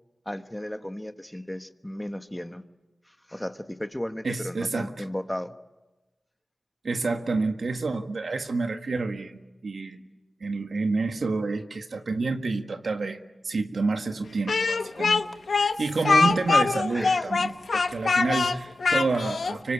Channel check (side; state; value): both; normal; correlation 0.91